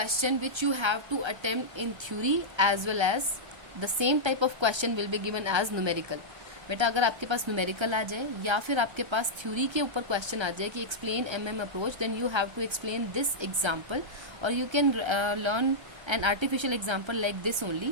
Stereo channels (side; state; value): left; late; 1.3 ms